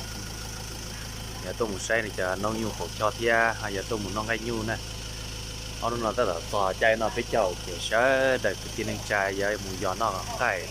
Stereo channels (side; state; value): both; identical; correlation 1.00